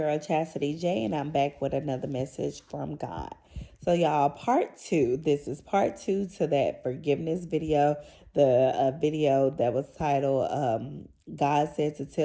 Chastity J, and I'm back with another message from God. So, y'all, part two. This is part two to that forgiveness video, the video that was titled God Said to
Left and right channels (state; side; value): identical; both; correlation 1.00